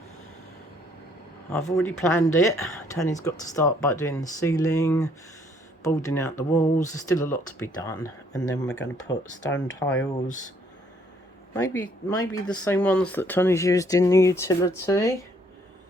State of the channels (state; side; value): normal; both; correlation 0.65